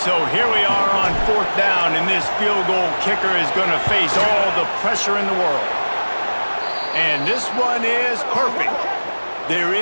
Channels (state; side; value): inverted; both; correlation -1.00